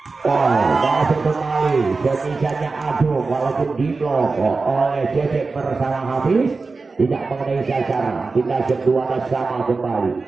Masuk kembali semisalnya Agung walaupun di blok oleh Cecep bersama Hafiz tidak mengenai sasaran. Kita kedua sama kembali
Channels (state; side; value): quieter; left; 4.1 dB